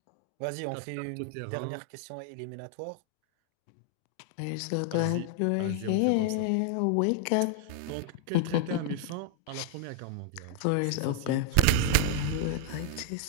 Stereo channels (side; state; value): both; different; correlation 0.00